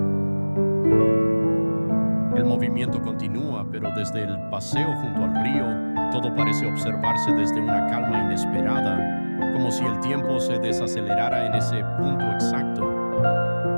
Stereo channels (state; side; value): inverted; both; correlation -1.00